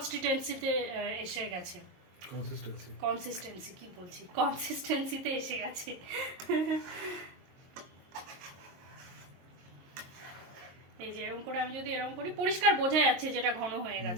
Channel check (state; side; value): late; left; 22 ms